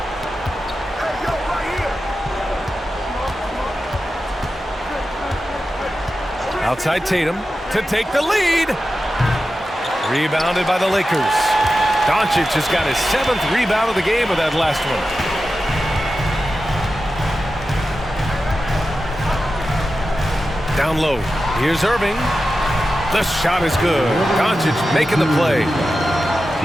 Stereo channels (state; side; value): normal; both; correlation 0.92